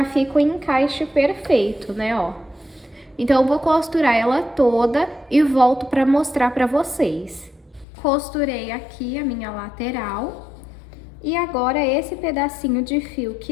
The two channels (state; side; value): drops out; right; at 7.9 s